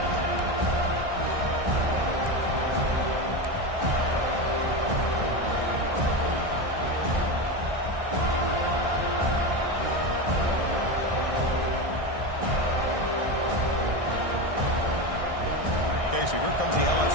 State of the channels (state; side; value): late; left; 1.6 ms